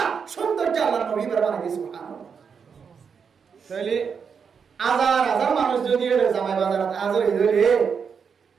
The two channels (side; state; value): left; quieter; 6.4 dB